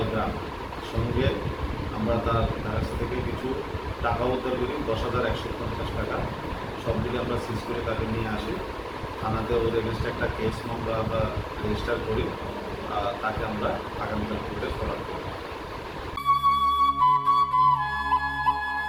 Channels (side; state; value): both; identical; correlation 1.00